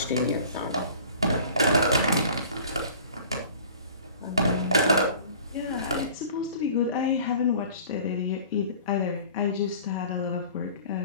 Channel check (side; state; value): both; inverted; correlation -0.46